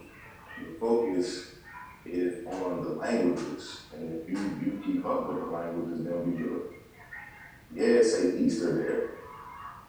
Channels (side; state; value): both; identical; correlation 1.00